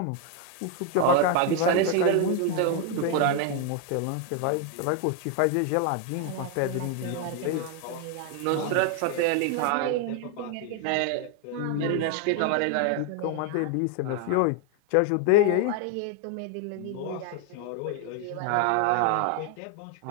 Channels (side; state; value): both; different; correlation 0.00